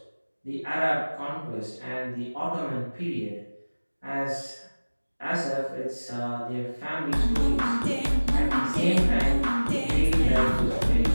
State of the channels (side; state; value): both; inverted; correlation -1.00